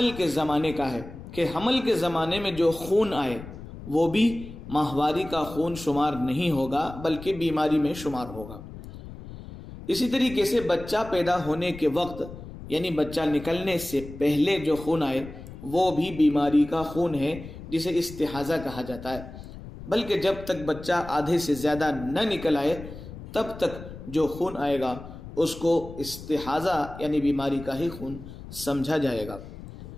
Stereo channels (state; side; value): noise; left; rumble, 13 dB below the sound